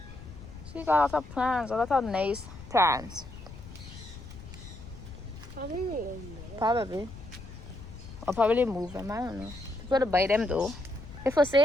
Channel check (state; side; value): noise; left; rumble, 15 dB below the sound